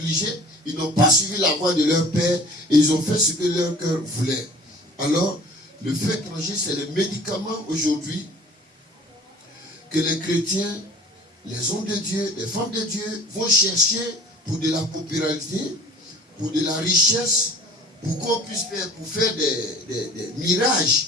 Ils n'ont pas suivi la voie de leur père. Et ils ont fait ce que leur cœur voulait. Alors, le feu étranger, c'est le médicament aujourd'hui que les chrétiens, les hommes de Dieu, les femmes de Dieu vont chercher pour de la popularité, pour de la richesse, pour qu'on puisse faire, pour faire des mirages.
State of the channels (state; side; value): normal; both; correlation 0.47